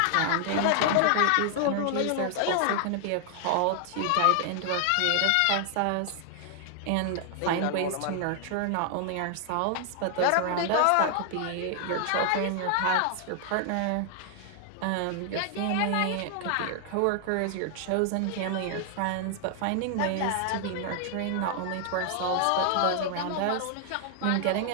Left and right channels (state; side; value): different; both; correlation 0.00